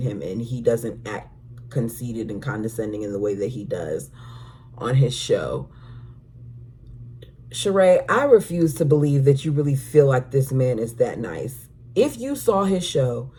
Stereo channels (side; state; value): both; identical; correlation 1.00